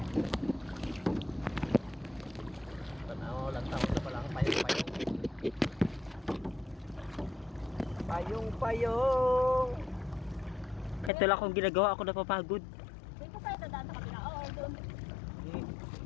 Tanaw lang tawag na palang payong-payong. Payong-payong. Kahit wala akong ginagawa, ako napapagod. Dito tayo dadaan sa kabila. Oo, doon. Sige.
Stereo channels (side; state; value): right; drops out; at 11.1 s